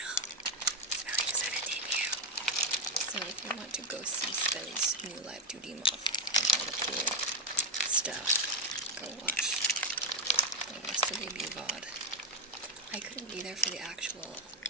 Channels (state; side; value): normal; both; correlation 0.04